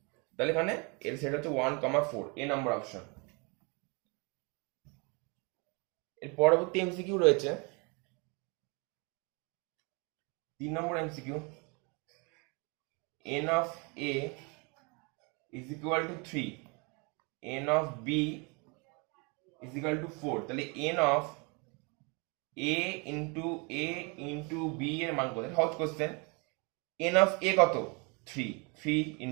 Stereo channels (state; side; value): quieter; left; 31.4 dB